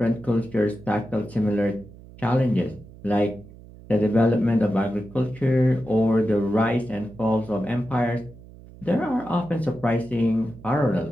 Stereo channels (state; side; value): noise; right; hum, 20 dB below the sound